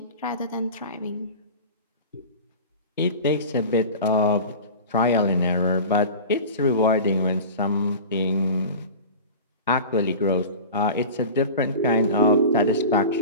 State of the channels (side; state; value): both; inverted; correlation -0.34